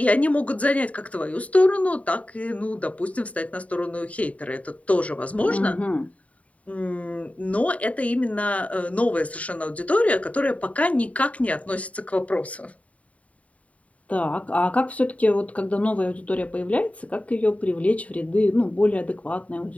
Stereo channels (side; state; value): right; late; 0.067 ms